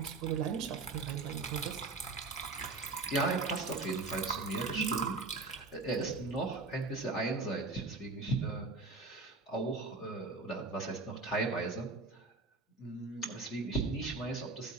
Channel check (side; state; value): left; quieter; 3.5 dB